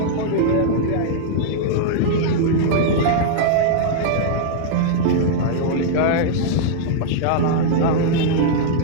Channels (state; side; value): different; both; correlation -0.01